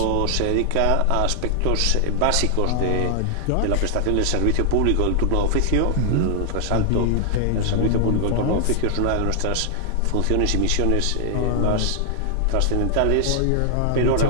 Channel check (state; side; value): different; both; correlation 0.00